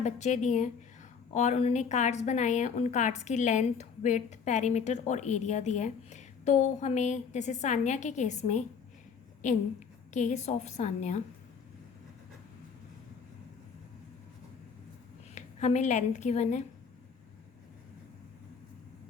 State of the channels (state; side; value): quieter; right; 6.3 dB